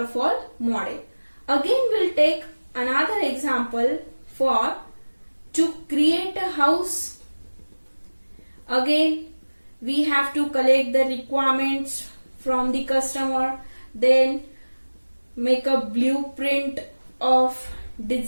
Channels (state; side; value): inverted; both; correlation -1.00